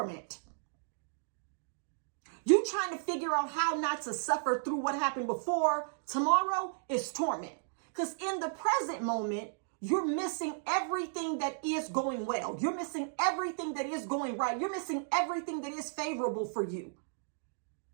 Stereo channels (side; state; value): left; silent; digital silence